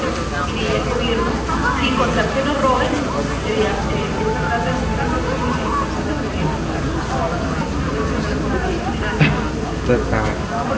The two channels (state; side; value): identical; both; correlation 1.00